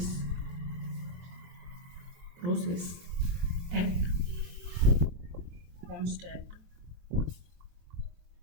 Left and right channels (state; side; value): late; left; 23 ms